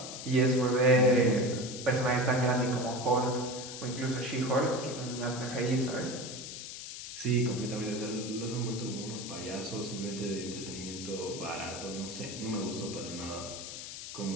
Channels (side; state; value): left; noise; hiss, 9 dB below the sound